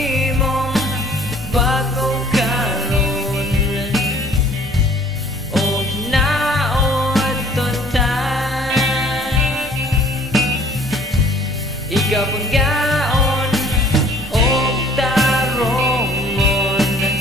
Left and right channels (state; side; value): normal; both; correlation 0.55